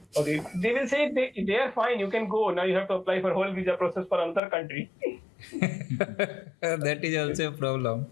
Okay, they will say they are fine. You can go now. You have to apply for whole visa process for another country. That is also a problem.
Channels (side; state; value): right; drops out; at 4.4 s